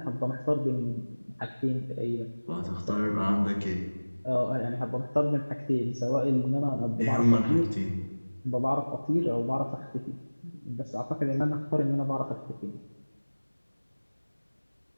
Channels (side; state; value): both; inverted; correlation -1.00